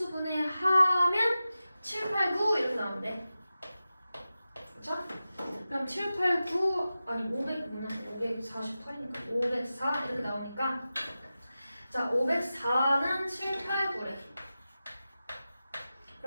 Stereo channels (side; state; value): both; inverted; correlation -0.94